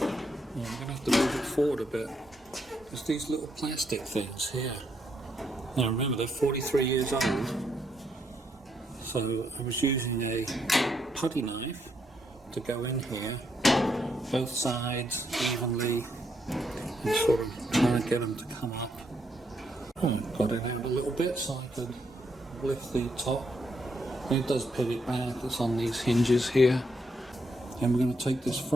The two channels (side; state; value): both; normal; correlation 0.77